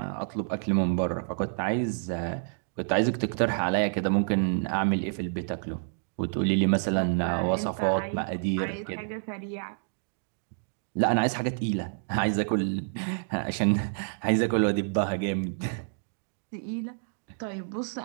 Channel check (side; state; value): left; silent; digital silence